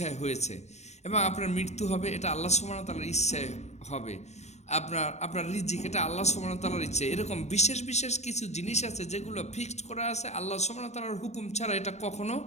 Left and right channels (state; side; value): late; right; 0.32 ms